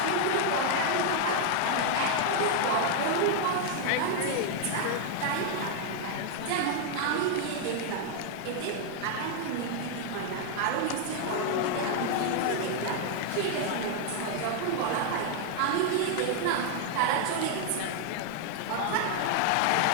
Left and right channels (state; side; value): different; both; correlation 0.00